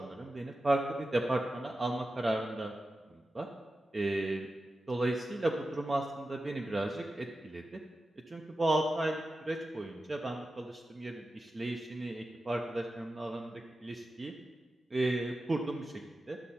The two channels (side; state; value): both; normal; correlation 0.92